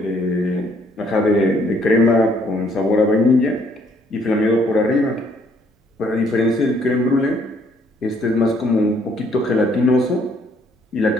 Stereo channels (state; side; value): normal; both; correlation 0.66